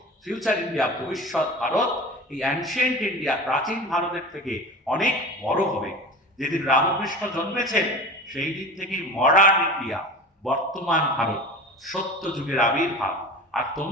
ফিউচার ইন্ডিয়া, ভবিষ্যৎ ভারত, এই অ্যানশিয়েন্ট ইন্ডিয়া, প্রাচীন ভারতের থেকে অনেক বড় হবে। যেদিন রামকৃষ্ণ জন্মেছেন সেই দিন থেকে মডার্ন ইন্ডিয়া, বর্তমান ভারত, সত্য যুগের আবির্ভাব। আর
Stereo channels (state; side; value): normal; both; correlation 0.34